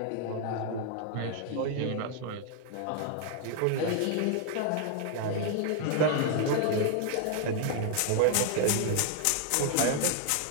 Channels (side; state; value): both; different; correlation 0.00